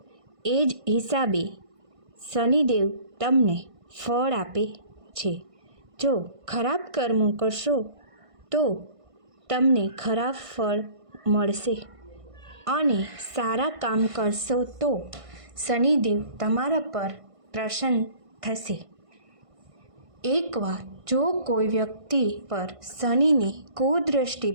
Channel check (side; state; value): left; late; 1.5 ms